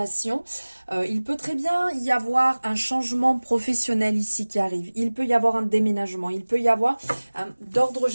Il peut très bien y avoir un changement professionnel ici qui arrive. Il peut y avoir un déménagement. Il peut y avoir, d'ordre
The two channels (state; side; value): inverted; both; correlation -1.00